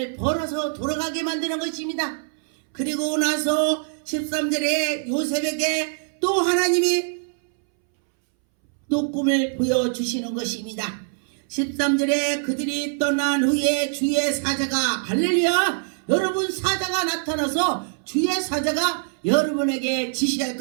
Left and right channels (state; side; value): silent; left; 63 dB below the other